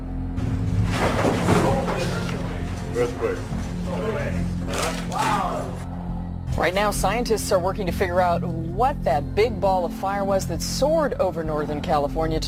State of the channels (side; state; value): both; identical; correlation 1.00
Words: Earthquake. Right now, scientists are working to figure out what that big ball of fire was that soared over Northern California